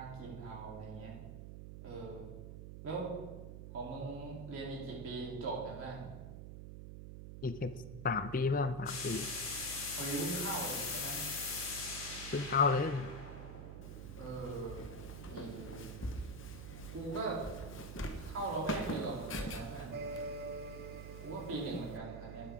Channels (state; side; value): noise; right; hum, 9 dB below the sound